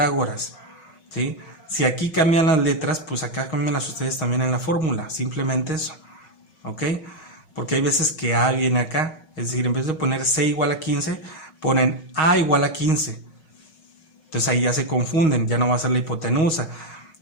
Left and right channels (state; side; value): late; right; 5.4 ms